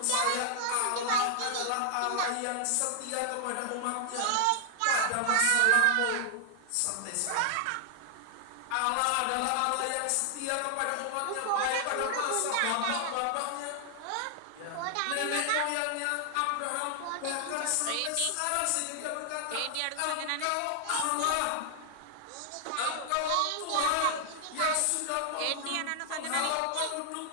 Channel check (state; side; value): different; both; correlation 0.00